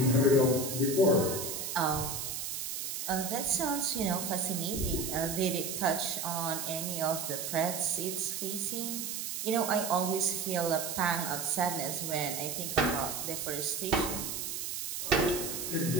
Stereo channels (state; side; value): noise; right; hiss, 4 dB below the sound